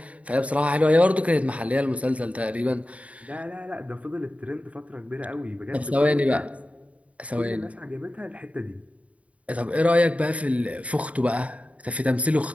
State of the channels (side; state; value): left; late; 0.066 ms